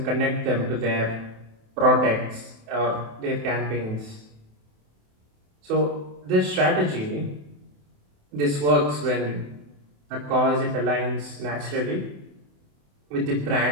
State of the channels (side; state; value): left; late; 28 ms